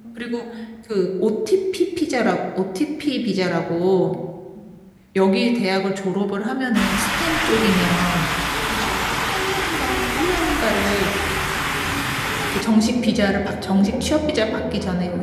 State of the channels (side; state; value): both; identical; correlation 1.00